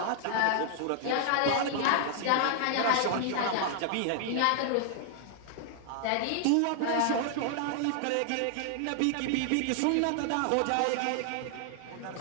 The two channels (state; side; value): different; both; correlation 0.00